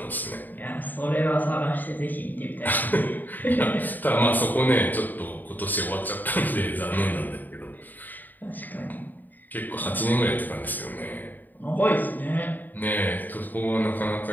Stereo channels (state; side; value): late; right; 0.087 ms